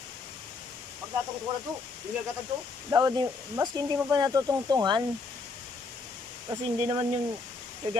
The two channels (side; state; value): right; quieter; 4.0 dB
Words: Pag natungtungan na to. Yung gagatan to. Dapat, maski hindi mo pa natutungtungan. Kasi hindi naman yung